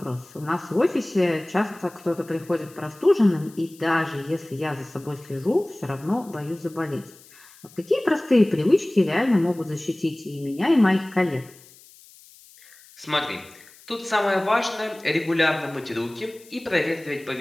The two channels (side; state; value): left; noise; hiss, 24 dB below the sound